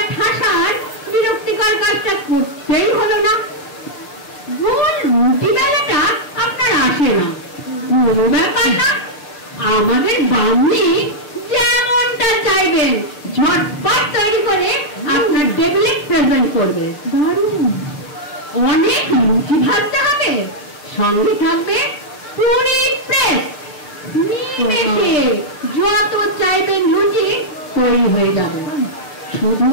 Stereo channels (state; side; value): late; right; 6.7 ms